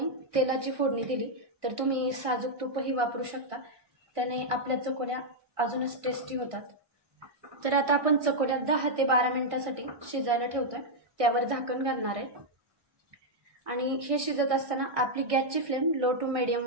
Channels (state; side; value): late; left; 1.6 ms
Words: तेलाची फोडणी दिली तर तुम्ही साजूक तूपही वापरू शकता। त्याने आपल्या चकोल्या अजूनच टेस्टी होतात। तर आता आपण चकोल्या 10 ते 12 मिनिटांसाठी शिजायला ठेवतोय। त्यावर झाकण घालणार आहे आणि हे शिजत असताना आपली गॅसची फ्लेम लो टू मीडियम